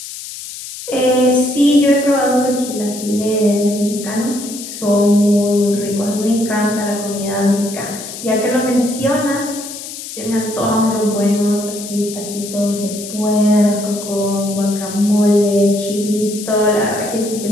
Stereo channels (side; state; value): left; noise; hiss, 11 dB below the sound